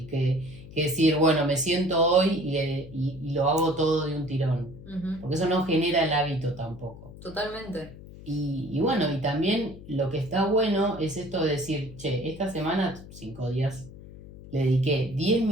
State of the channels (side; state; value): left; noise; hum, 16 dB below the sound